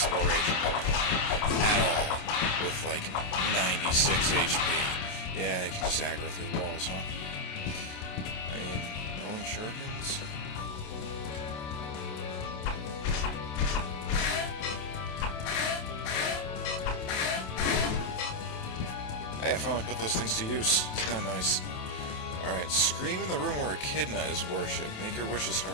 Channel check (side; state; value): right; late; 27 ms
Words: at all with like 96 HP. Yeah, you can just aggro through the walls, huh? I mean, rolling shurikens? Hey, I finally put those things to use. It's kind of nice. Alright, scream in the room where Echidna is worshipped. Make your wishes